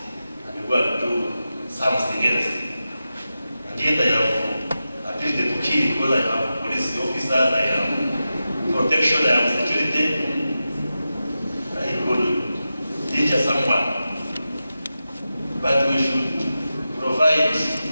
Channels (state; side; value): inverted; both; correlation -0.92